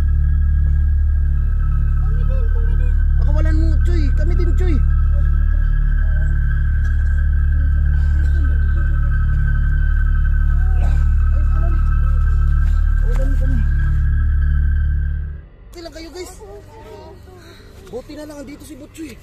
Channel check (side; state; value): both; identical; correlation 1.00